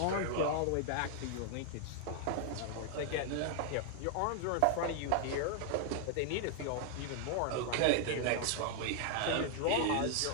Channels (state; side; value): different; both; correlation 0.00